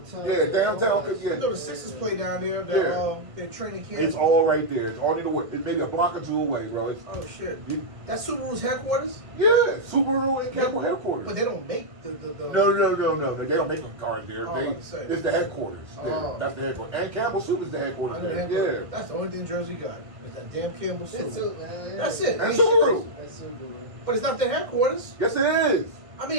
Yeah, downtown, All that yeah. I know the Sixers play down there. They're training camp. It's all right there. It's all it's maybe a block or 2 away, bro. It's, Oh shit. That's Subaru's headquarters? yeah, Subaru and Campbell headquarters. But they don't make the No. They don't make them cars there. Oh, I was about to say. It's the headquarters. Oh. That's the headquarters. And Campbell Soup is the I headquarters know the there. headquarters. Yeah. That's the only thing Jersey got. Is that damn Campbell That's soup. it, man. That's it. And Ain't Subaru. shit. That's Subaru. But it's not their headquarters. Yes, it is. I mean,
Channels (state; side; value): late; left; 1.6 ms